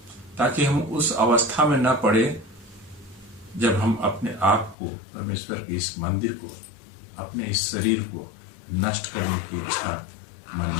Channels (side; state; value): right; drops out; at 4.8 s